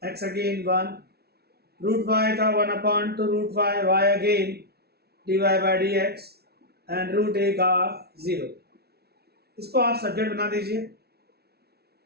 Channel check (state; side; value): late; left; 0.46 ms